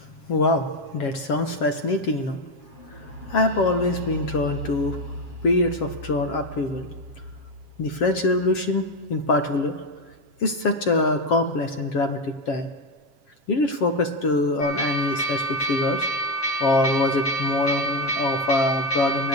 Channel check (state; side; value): late; right; 7.4 ms